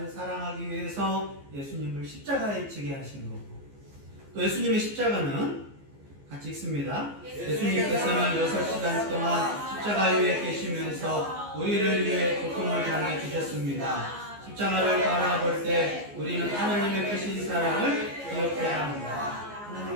사랑하기 위해서 예수님을 십자가에 지게 하신 거고, 또 예수님의 십자가는 같이 읽습니다. 예수님께서는 6시간 동안 십자가 위에 계시면서 우리를 위해 고통을 당해 주셨습니다. 십자가를 바라볼 때 우리는 하나님의 크신 사랑을 기억해야 합니다.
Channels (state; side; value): late; left; 14 ms